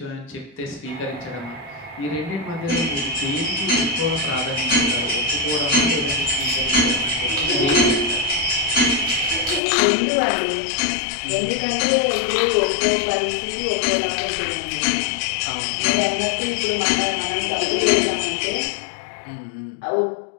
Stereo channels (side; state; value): right; drops out; at 9.6 s